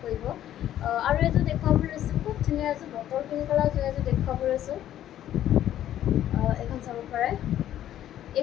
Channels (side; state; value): right; quieter; 11.9 dB